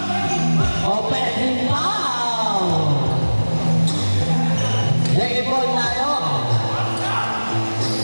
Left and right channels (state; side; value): inverted; both; correlation -1.00